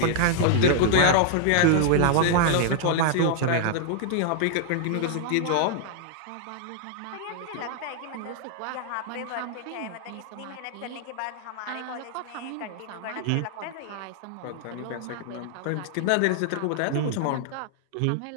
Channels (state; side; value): different; both; correlation -0.01